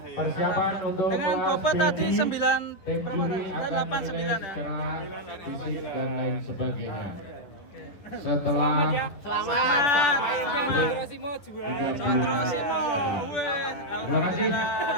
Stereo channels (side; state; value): right; late; 11 ms